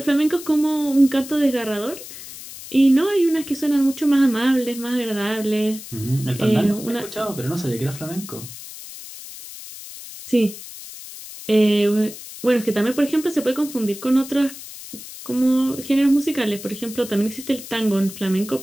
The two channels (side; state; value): left; noise; hiss, 14 dB below the sound